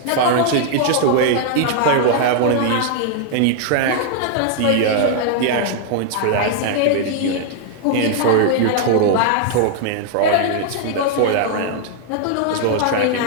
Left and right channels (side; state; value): both; different; correlation 0.00